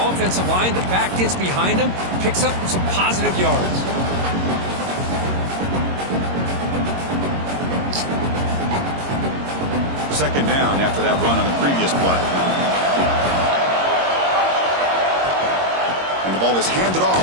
line. The back gets behind him, picks up some positive yards. Second down after that run on the previous play. And the ball is handed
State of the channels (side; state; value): left; late; 22 ms